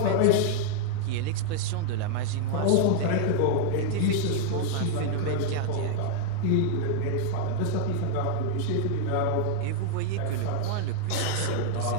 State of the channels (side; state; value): both; different; correlation 0.00